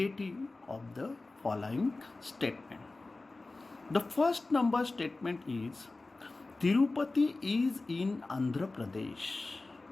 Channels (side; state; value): right; quieter; 3.3 dB